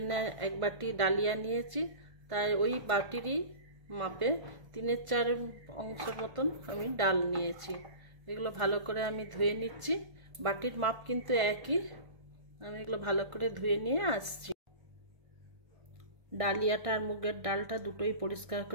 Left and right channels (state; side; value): late; left; 1.4 ms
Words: এক বাটি ডালিয়া নিয়েছি। তাই ওই বাটিরই মাপে 3/4 অংশের মতন আমি ডাল নিয়েছি। এগুলো ভালো করে আমি ধুয়ে নিচ্ছি। বাটির মাপ কিন্তু একই। আমি এগুলো ভালো করে ধুয়ে নিয়ে আসছি। ডালিয়াটা আর মুগের ডালটা দুটোই পরিষ্কার